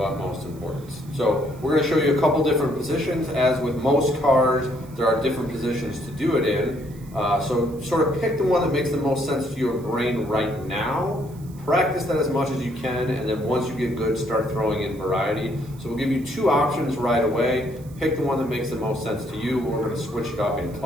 importance. So we're going to show you a couple different positions. As with most CARs, there are different positions to do it in. So sort of pick the one that makes the most sense to your brain right now. Practice that as much as you can, and then once you get good, start throwing in variety. So we'll give you two options right away. Pick the one that makes the most sense to you. We're going to switch it up in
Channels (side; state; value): right; noise; hiss, 25 dB below the sound